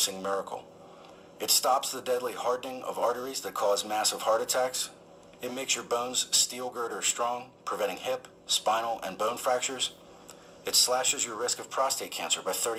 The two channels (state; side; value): identical; both; correlation 1.00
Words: miracle. It stops the deadly hardening of arteries that cause massive heart attacks. It makes your bones steel girder strong, preventing hip, spinal, and bone fractures. It slashes your risk of prostate cancer by